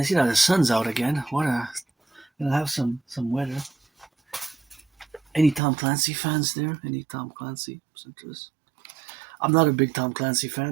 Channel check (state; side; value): drops out; left; at 5.6 s